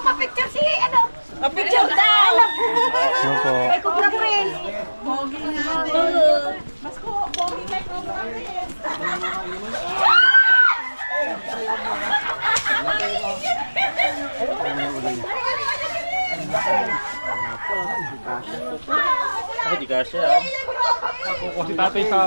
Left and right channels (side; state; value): both; inverted; correlation -1.00